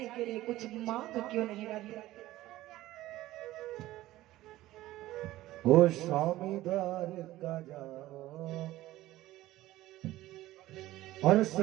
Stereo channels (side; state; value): left; quieter; 16.1 dB